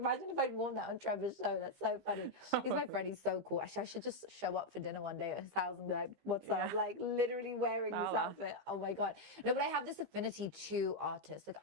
if I'd worn that on Trevor's show. That's so funny. He's my friend. He's so cool. Actually, I should just show up for dinner one day at his house and be like, what's up? Like literally wearing this outfit. Oh my God. No, but I have this affinity to artists. Like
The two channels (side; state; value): left; late; 15 ms